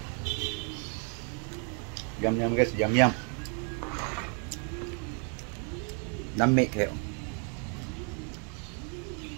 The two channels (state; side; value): quieter; left; 39.5 dB